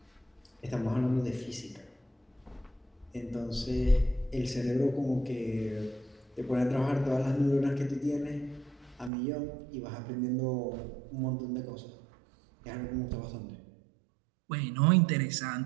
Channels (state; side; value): drops out; left; at 9.1 s